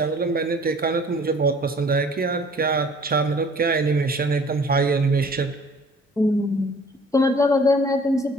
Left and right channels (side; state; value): both; normal; correlation 0.52